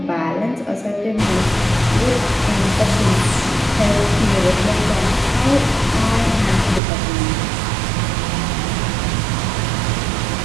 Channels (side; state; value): left; drops out; at 6.8 s